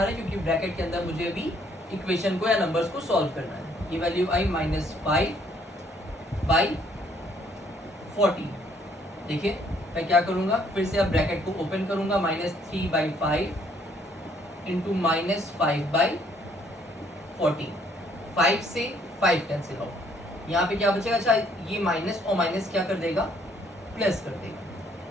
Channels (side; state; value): both; normal; correlation 0.65